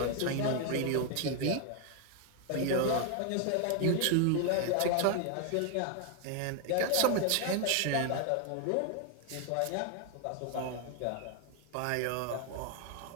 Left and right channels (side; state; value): both; different; correlation 0.01